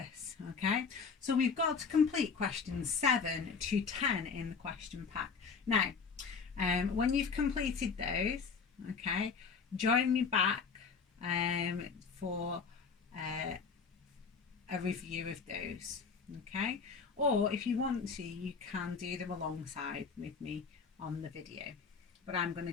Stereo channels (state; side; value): quieter; right; 5.5 dB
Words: Okay, so we've got to complete questions 7 to 10 in the question pack. Now When you've completed those, okay, join me back for a review of those, okay? Or if you want to, you can do them alongside with me on the video, but I'm going